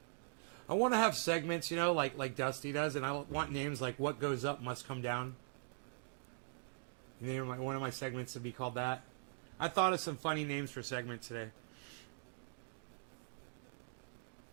want to have segments, you know, like Dusty does, and I want names like "What Goes Up Must Come Down." And one of my segments to be called that. I thought of some funny names for segments today.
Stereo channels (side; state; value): left; silent; digital silence